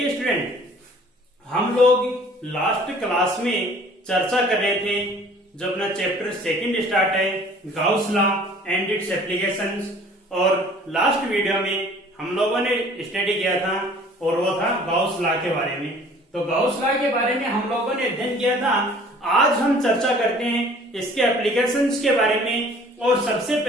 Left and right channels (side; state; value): both; normal; correlation 0.52